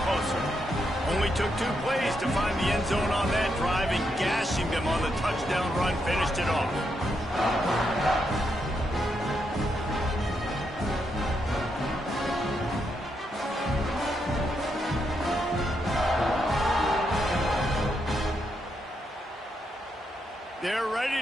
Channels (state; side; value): normal; both; correlation 0.81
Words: closer. Only took 2 plays to find the end zone on that drive, and gashing them on the touchdown run finished it off. They're ready